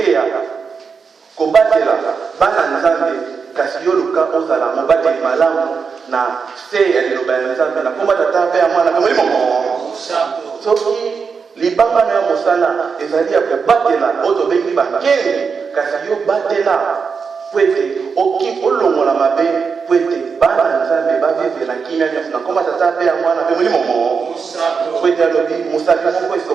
kobatela bana nzambe kasi yo luka ozala mobateli malamu na se ya liloba ya nzambe na komba tata mpe ya mwana mpe molimo mo soki libanga na ya mosala ezali ya kobatela oyo tobengi bakenge kasi yo batela po ete olongola mabe po ete bana nzambe bavivela kimia nyonso na komba tata mpe ya mwana mpe molimo mo po ete alobi mosaki moko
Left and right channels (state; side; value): quieter; left; 5.6 dB